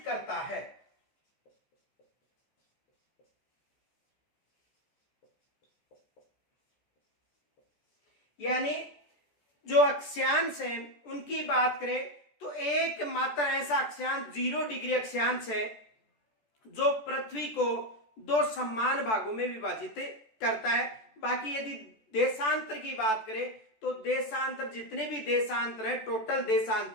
करता है। यानी जो अक्षांश है उनकी बात करें तो एक मात्र ऐसा अक्षांश 0 डिग्री अक्षांश है जो पृथ्वी को दो समान भागों में विभाजित करता है। बाकी यदि देशांतर की बात करें तो देशांतर जितने भी देशांतर है, टोटल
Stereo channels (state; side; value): late; right; 14 ms